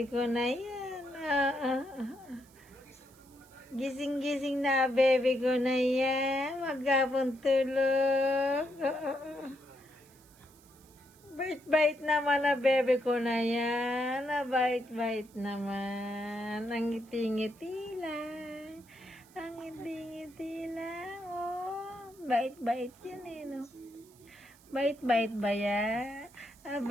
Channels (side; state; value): right; noise; hiss, 27 dB below the sound